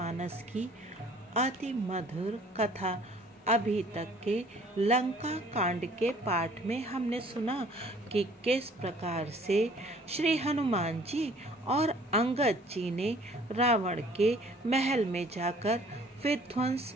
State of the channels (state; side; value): normal; both; correlation 0.55